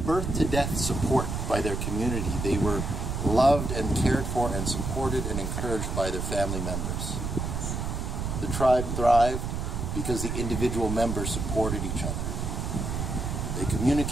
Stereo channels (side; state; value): right; noise; rumble, 3 dB below the sound